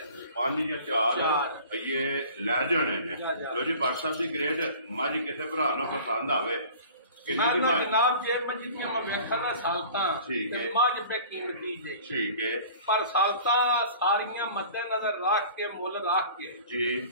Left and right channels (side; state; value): both; inverted; correlation -0.45